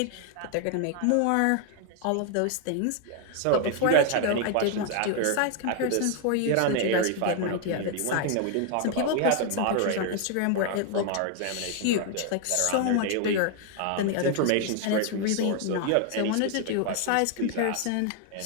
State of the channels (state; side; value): different; both; correlation 0.00